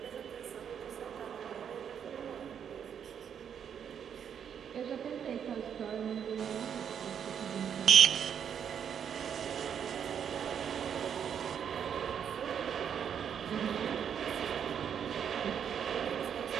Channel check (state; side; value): quieter; left; 8.1 dB